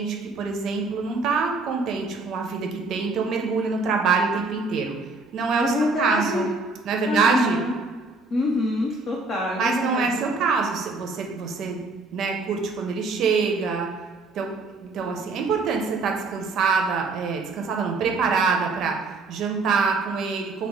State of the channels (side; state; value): left; quieter; 3.6 dB